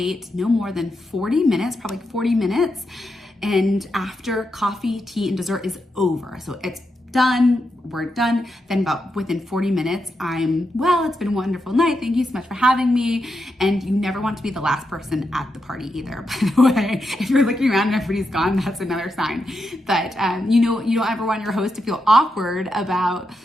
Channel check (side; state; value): both; normal; correlation 0.85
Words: no more than 40 minutes, probably 40 minutes, and after coffee, tea, and dessert is over. So it's done, we're done, then about within 40 minutes, it's been a wonderful night, thank you so much for having me. And you never want to be the last person at the party either, by the way. If you're looking around and everybody's gone, that's another sign. But you don't ever want your host to feel awkward about,